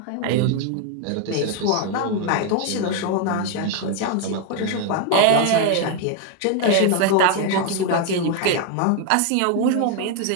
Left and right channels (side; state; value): both; different; correlation 0.01